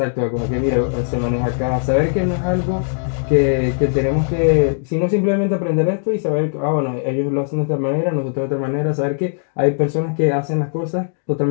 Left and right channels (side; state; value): right; silent; digital silence